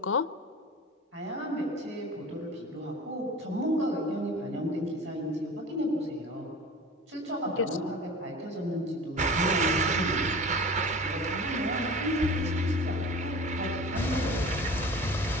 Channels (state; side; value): normal; both; correlation 0.38